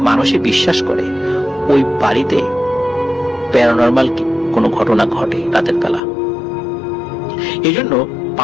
মানুষই বিশ্বাস করে ওই বাড়িতে প্যারানরমাল কোনো ঘটনা ঘটে রাতের বেলা। এই জন্য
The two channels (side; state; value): right; drops out; at 6.0 s